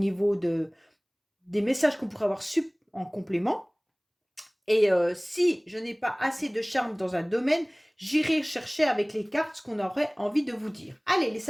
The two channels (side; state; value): both; identical; correlation 1.00